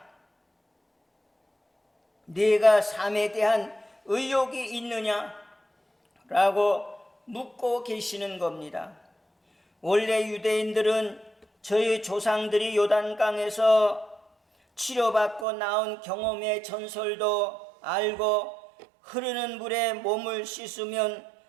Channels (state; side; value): drops out; left; at 15.5 s